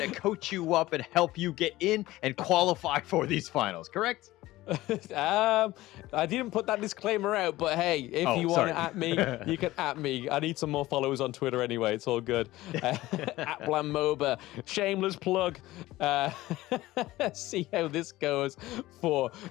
to coach you up and help you get in and qualify for these finals, correct? I didn't put that disclaimer out, but hey, if you want to at me, you can at me. I need some more followers on Twitter anyway. It's all good. At Blamoba, shameless plug. See how this goes for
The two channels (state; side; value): quieter; right; 17.3 dB